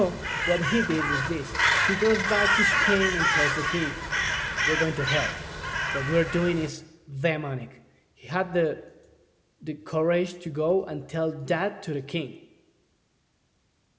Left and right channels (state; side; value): identical; both; correlation 1.00